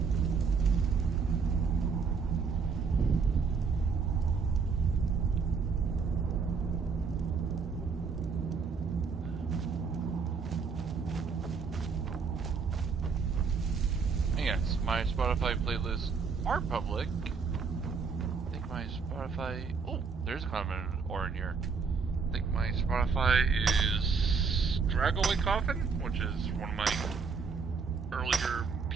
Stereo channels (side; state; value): left; quieter; 5.3 dB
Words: Yes, my Spotify playlists are public. I think my Spotify... Oh, there's kind of an or in here. I think my Spotify is Dragaway Coffin, which is one of my earlier